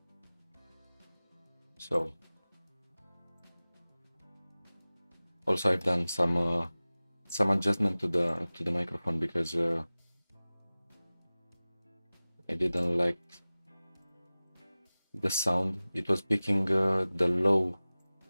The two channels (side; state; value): both; inverted; correlation -0.98